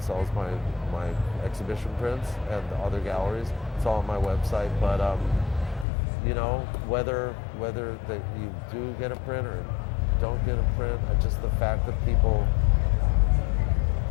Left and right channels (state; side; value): drops out; right; at 5.9 s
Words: my exhibition prints, and other galleries. It's all on my website. But whether that you do get a print or don't get a print, just the fact that people